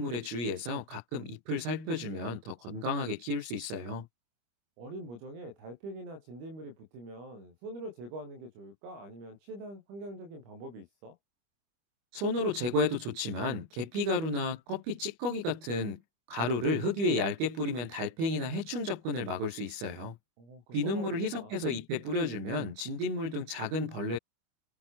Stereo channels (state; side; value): late; left; 25 ms